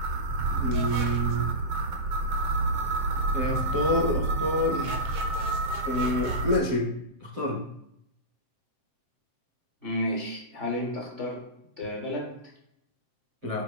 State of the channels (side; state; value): left; late; 7.7 ms